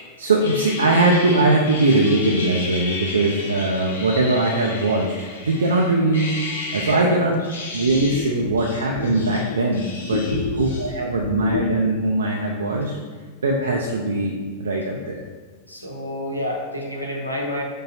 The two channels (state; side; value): inverted; both; correlation -0.41